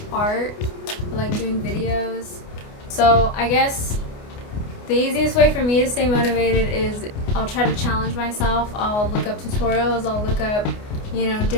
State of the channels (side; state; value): right; late; 29 ms